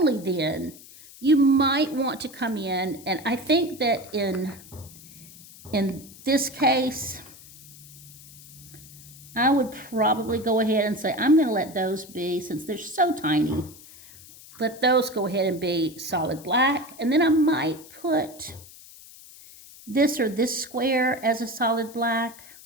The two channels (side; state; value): left; noise; hiss, 19 dB below the sound